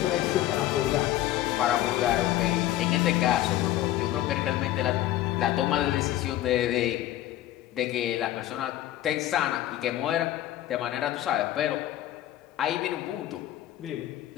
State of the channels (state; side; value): quieter; right; 13.9 dB